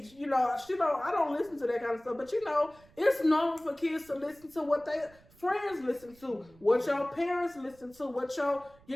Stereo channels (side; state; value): right; noise; rumble, 27 dB below the sound